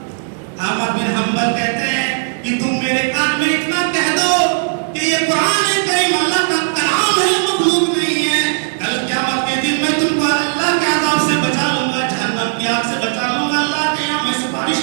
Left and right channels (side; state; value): left; silent; digital silence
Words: احمد بن حنبل کہتے ہیں کہ تم میرے کان میں اتنا کہہ دو کہ یہ قرآن کریم اللہ کا کلام ہے, مخلوق نہیں ہے. کل قیامت کے دن میں تم کو اللہ کے عذاب سے بچا لوں گا, جہنم کی آگ سے بچا لوں گا, اللہ کے یہاں میں